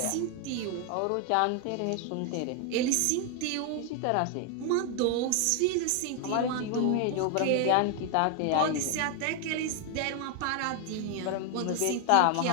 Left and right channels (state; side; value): different; both; correlation 0.00